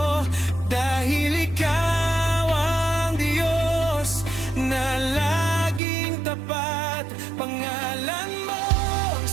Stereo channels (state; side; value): drops out; left; at 5.8 s